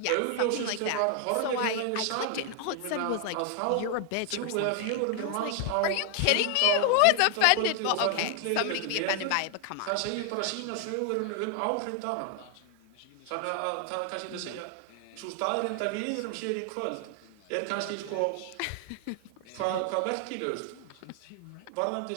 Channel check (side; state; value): both; different; correlation 0.00